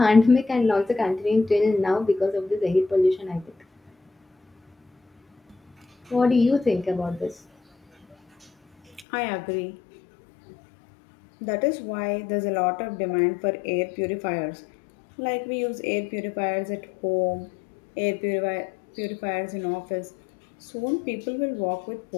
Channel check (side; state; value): right; drops out; at 9.1 s